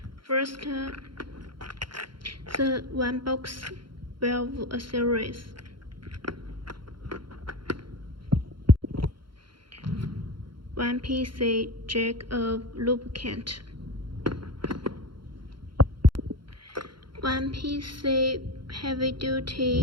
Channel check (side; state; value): left; late; 0.73 ms